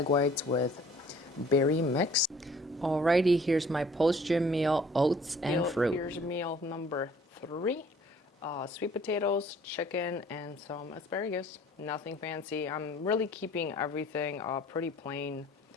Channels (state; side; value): normal; both; correlation 0.55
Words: whites with berry mix. Alrighty, here's my post-gym meal, oats and fruit. Here's meal number three, sweet potatoes, chicken, and some asparagus. Nothing fancy. I'm really keeping everything pretty plain